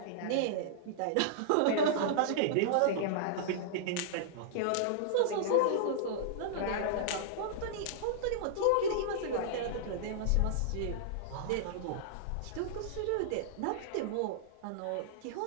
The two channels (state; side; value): different; both; correlation -0.01